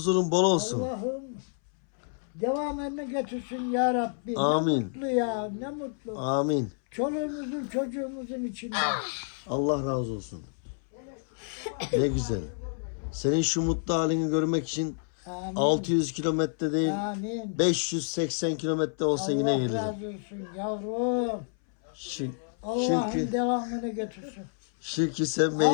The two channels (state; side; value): silent; right; 59 dB below the other